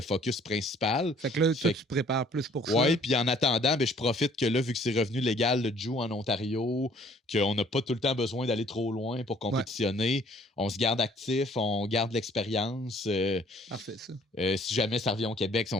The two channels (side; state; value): both; normal; correlation 0.58